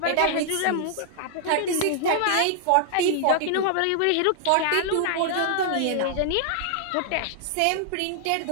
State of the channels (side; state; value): both; different; correlation 0.00